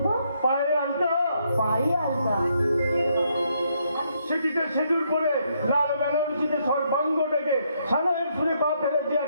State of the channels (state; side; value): inverted; both; correlation -0.74